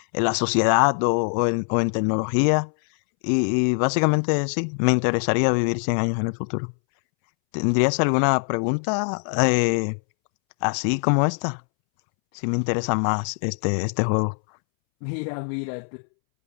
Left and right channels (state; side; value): silent; right; 64 dB below the other